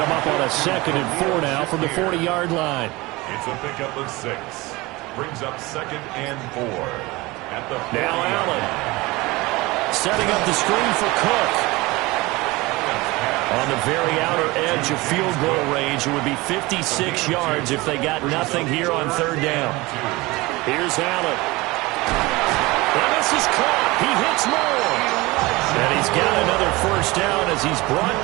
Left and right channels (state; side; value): quieter; left; 21.9 dB